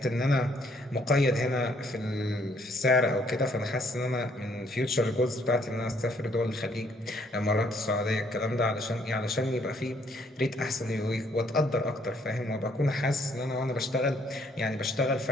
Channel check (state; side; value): normal; both; correlation 0.66